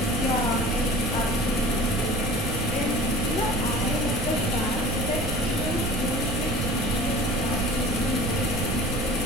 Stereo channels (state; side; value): noise; right; rumble, 3 dB below the sound